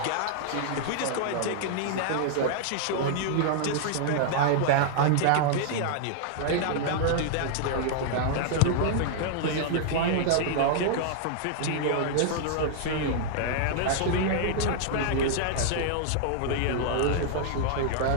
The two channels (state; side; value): different; both; correlation -0.01